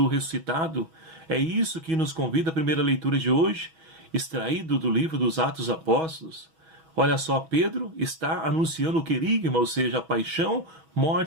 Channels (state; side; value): late; left; 6.2 ms